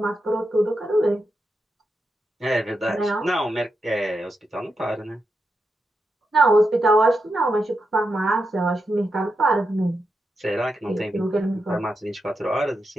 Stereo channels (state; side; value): normal; both; correlation 0.86